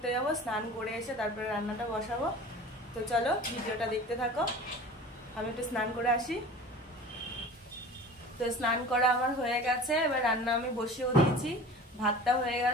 যাব, স্নান করে এসে তারপরে রান্নাটা বসাবো। তো চলো ভিডিওটা দেখতে থাকো। আমি একটু স্নান করে আসি। তো স্নান করা আমার হয়ে গেছে, এবার রান্না আমি বসিয়েও দিয়েছি। ভাতটা হয়ে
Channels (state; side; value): normal; both; correlation 0.39